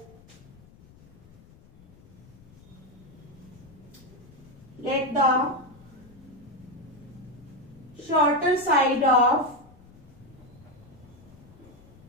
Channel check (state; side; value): noise; left; rumble, 23 dB below the sound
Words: shorter side of